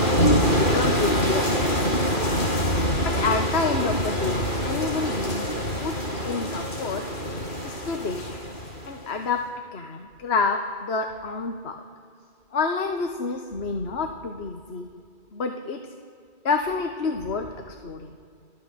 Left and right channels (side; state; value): right; late; 2.4 ms